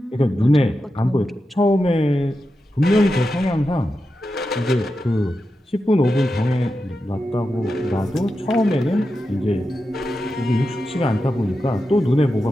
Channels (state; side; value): normal; both; correlation 0.90